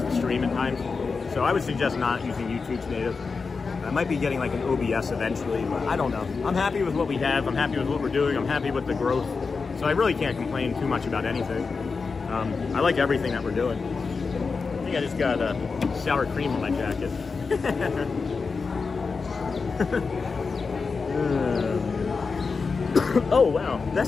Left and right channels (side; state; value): right; quieter; 4.7 dB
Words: the stream at times. So I would suggest not using YouTube's native. I might be getting like an OBS eventually, but I don't know. I'm happy with what we have. I'm happy with what we're doing. I'm happy with the growth. So I really can't complain too much about anything. I like everything that we're doing. I think I just got sour cream on my jacket. Oh wow,